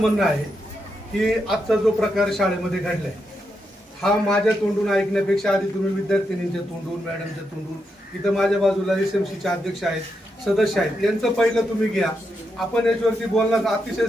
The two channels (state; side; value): normal; both; correlation 0.84